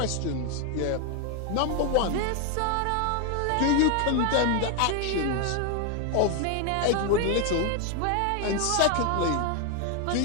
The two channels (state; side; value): different; both; correlation 0.01